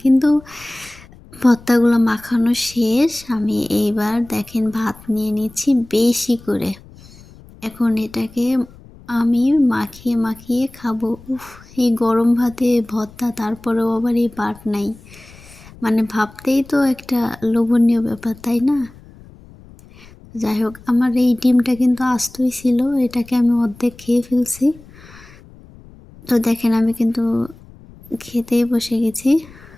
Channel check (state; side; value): noise; left; rumble, 22 dB below the sound